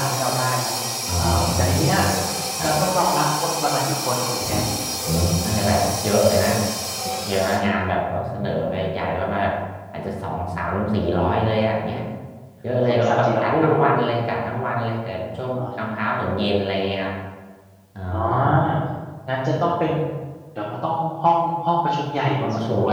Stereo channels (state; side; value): identical; both; correlation 1.00